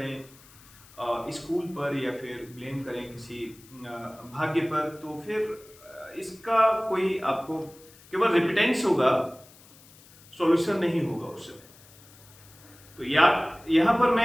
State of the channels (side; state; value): left; noise; hiss, 24 dB below the sound